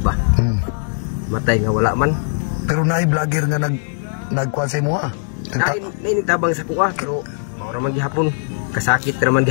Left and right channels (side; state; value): right; silent; digital silence